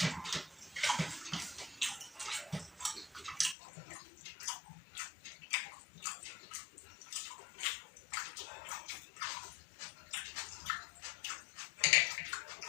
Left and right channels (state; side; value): drops out; right; at 3.6 s